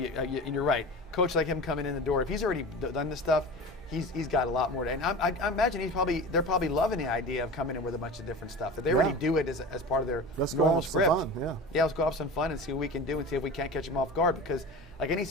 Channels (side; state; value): both; normal; correlation 0.33